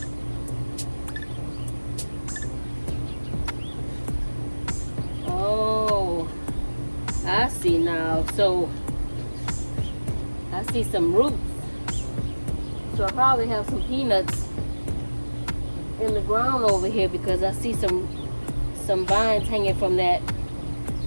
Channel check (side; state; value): both; inverted; correlation -1.00